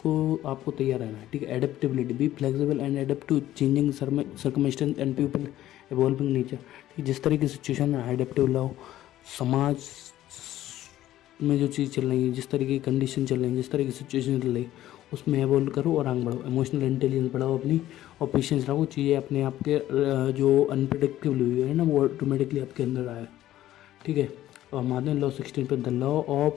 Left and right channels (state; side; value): quieter; right; 13.7 dB